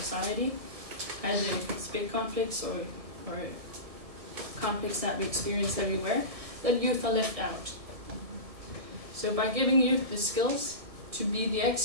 either it's big conflicts or conflicts that we experience everywhere, that youth are left out. So by giving youth the skills to be the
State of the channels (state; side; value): late; left; 1.6 ms